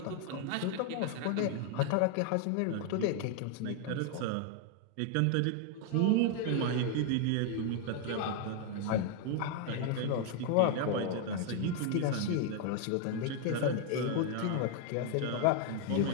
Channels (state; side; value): different; both; correlation 0.00